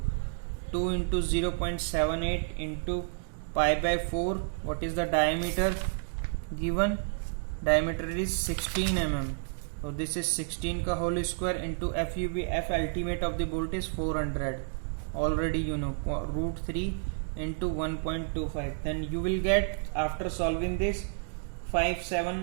2 into 0.78 into pi by 4. What is the diameter given? diameter is 16 mm. So this is 16 ka whole square into FUB, F ultimate of the bolt is 400. Already you know, root 3 into 1.25. Then you will get, after solving this,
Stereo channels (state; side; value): silent; left; digital silence